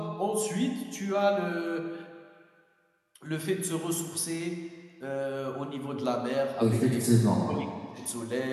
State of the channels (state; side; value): identical; both; correlation 1.00